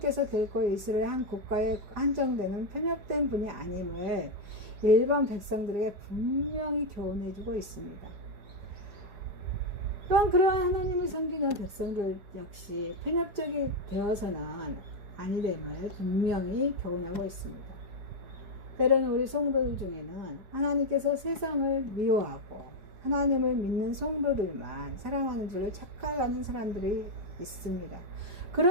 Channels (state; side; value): late; left; 4.7 ms